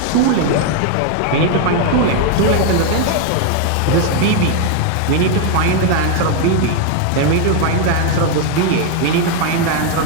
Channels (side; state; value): both; different; correlation 0.01